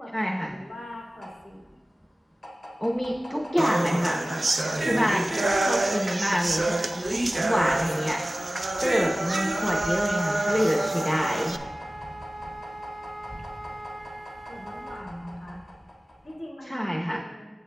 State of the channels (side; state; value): both; normal; correlation 0.97